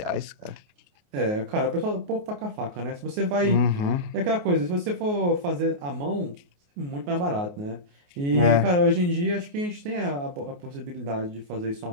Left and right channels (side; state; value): left; late; 28 ms